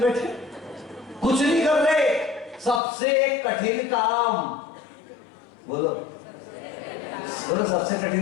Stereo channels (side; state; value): right; drops out; at 2.8 s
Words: कुछ नहीं कर रहे। सबसे कठिन काम, बोलो बोलो, सबसे